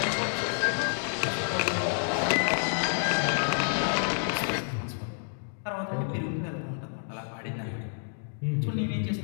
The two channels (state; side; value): silent; right; digital silence